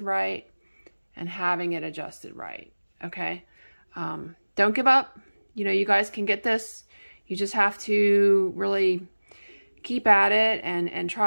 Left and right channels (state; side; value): inverted; both; correlation -1.00